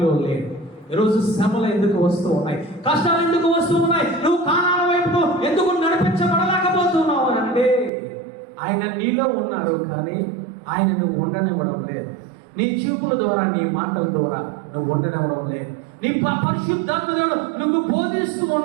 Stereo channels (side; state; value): left; drops out; at 7.9 s